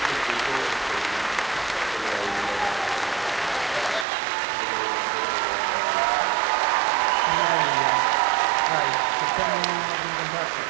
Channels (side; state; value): left; drops out; at 4.0 s